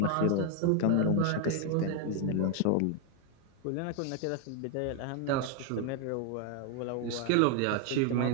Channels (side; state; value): both; different; correlation 0.00